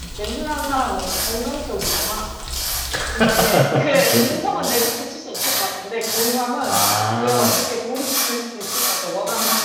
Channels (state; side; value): identical; both; correlation 1.00